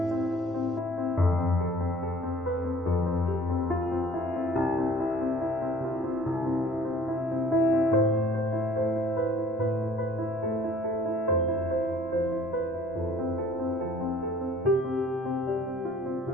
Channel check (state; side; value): normal; both; correlation 0.53